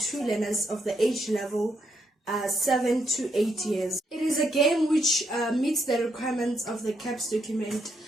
learners of the age level 7 to 8 years. It is a game which meets the requirements of the CAPS document,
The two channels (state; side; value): normal; both; correlation 0.77